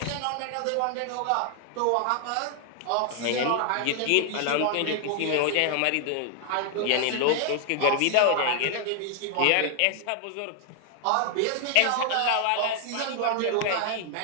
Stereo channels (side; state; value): both; different; correlation 0.00